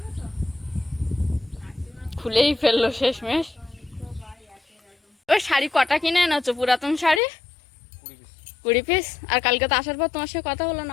খুলেই ফেললো শেষমেশ। ওই শাড়ি কটা কিনে এনেছো? পুরাতন শাড়ি 20 পিস। আর কালকে তো আসার পর তোমার সাথে কথা হলো না,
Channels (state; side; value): drops out; right; at 7.2 s